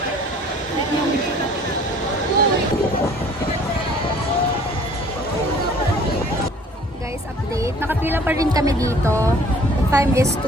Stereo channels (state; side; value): normal; both; correlation 0.53